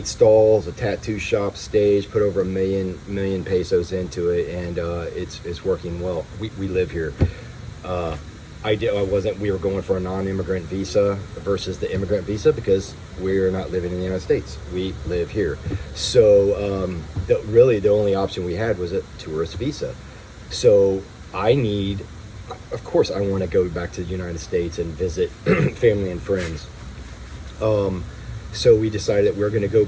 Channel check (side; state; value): both; identical; correlation 1.00